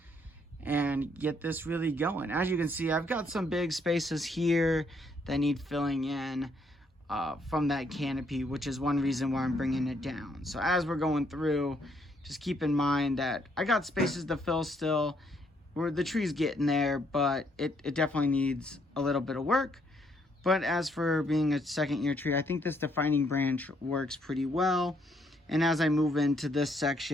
and get this really going. As you can see, I've got some big spaces here that need filling in from that canopy, which is one reason why I'm bringing it down. So as we're going through, just keep in mind that I got spaces to fill still. The tree's getting there, but it definitely needs a little bit of work. But as for being a second year tree, I think this defining branch works pretty well. And as I move into this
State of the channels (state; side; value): normal; both; correlation 0.71